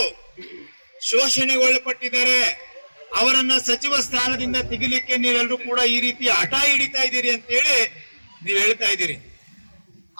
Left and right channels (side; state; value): both; inverted; correlation -1.00